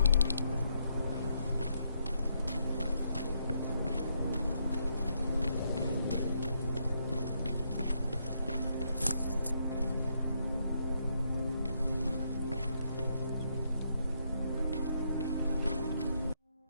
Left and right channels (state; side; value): inverted; both; correlation -0.76